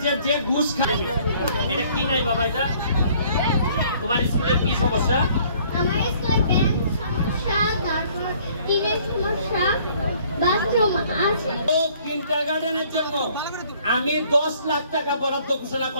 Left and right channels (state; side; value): inverted; both; correlation -0.59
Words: যে যে ঘুষ খায় এটা কি নাই বাবা, এটা তোমার স্কুলের কি সমস্যা? আমার স্কুলে বেঞ্চ সমস্যা, তারপর টিনের সমস্যা, বাথরুম আছে। তো কিন্ডারগার্টেনের জন্য আমি 10 লাখ টাকা বরাদ্দ ঘোষণা